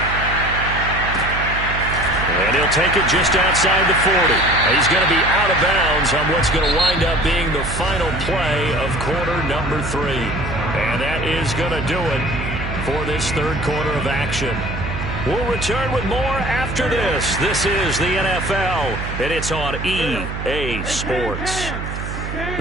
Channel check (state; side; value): noise; right; hum, 6 dB below the sound